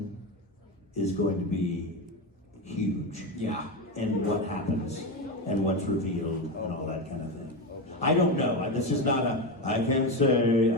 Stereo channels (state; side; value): normal; both; correlation 0.15